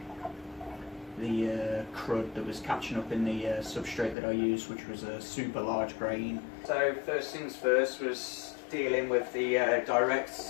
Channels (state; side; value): drops out; right; at 4.2 s